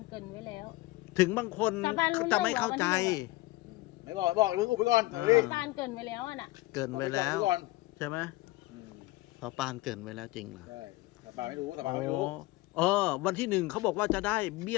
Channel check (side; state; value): right; quieter; 19.7 dB